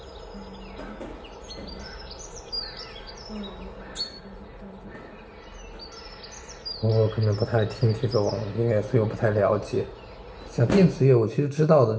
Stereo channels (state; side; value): identical; both; correlation 1.00